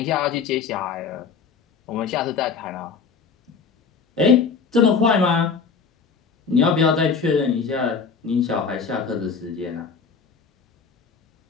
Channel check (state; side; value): quieter; right; 5.5 dB